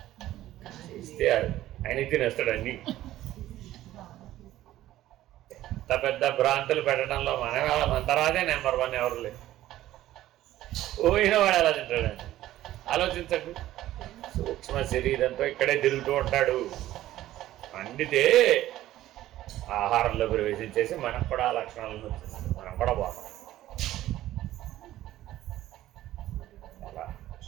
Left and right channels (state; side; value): quieter; left; 14.3 dB